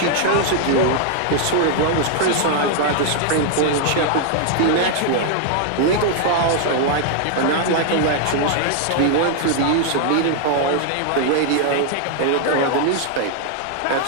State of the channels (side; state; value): both; different; correlation 0.00